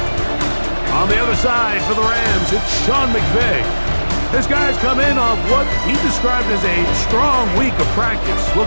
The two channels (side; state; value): both; inverted; correlation -1.00